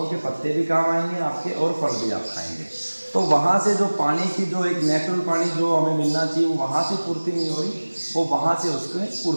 के पत्ते भी काम आएंगे आपके, और फल भी आप खाएंगे। तो वहाँ से जो पानी की जो एक नेचुरल पानी जो हमें मिलना चाहिए वो वहाँ से पूर्ति नहीं हो रही, वो वहाँ से उसमें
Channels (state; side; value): inverted; both; correlation -1.00